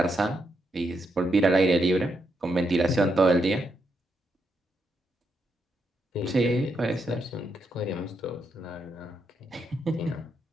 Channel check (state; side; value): normal; both; correlation 0.81